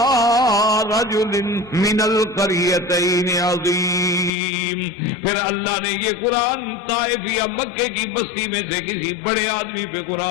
رجل من القریتین عظیم, پھر اللہ نے یہ قرآن طائف یا مکے کی بستی میں سے کسی بڑے آدمی پہ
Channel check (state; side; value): drops out; right; at 4.3 s